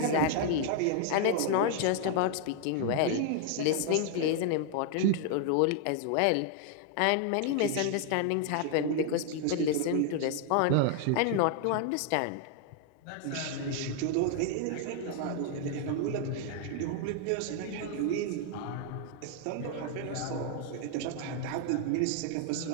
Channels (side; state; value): both; different; correlation 0.00